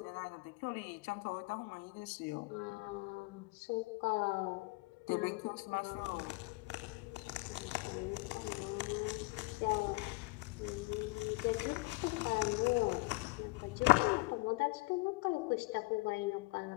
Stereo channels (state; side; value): quieter; right; 24.0 dB